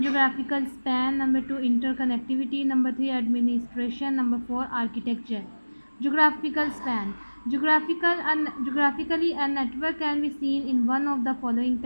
geographical span, number 2 interconnectivity, number 3 administration, number 4 architecture. Geographical span, geographically a network can be seen in one of the following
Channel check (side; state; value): both; inverted; correlation -1.00